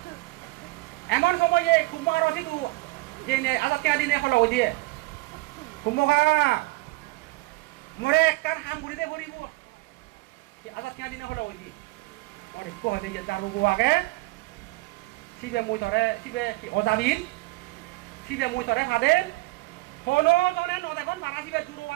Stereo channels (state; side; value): quieter; left; 22.2 dB